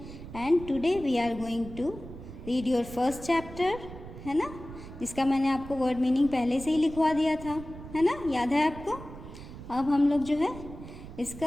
and today we are going to read your first chapter, है ना, जिसका मैंने आपको word meaning पहले से ही लिखवा दिया था, है ना, याद है आपको। अब हम लोग जो है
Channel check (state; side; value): noise; right; rumble, 13 dB below the sound